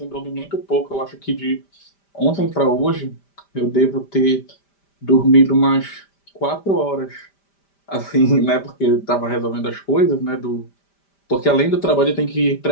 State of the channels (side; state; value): right; late; 5.1 ms